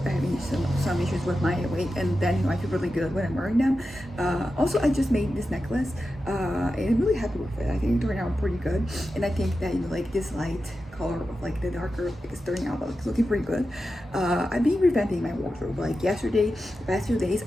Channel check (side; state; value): both; normal; correlation 0.91